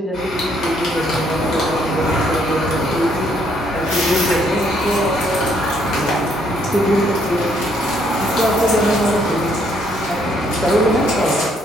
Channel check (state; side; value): normal; both; correlation 0.69